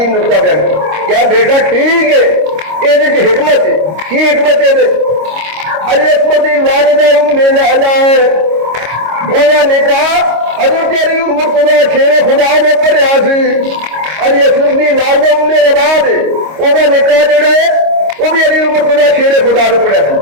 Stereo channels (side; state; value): left; late; 26 ms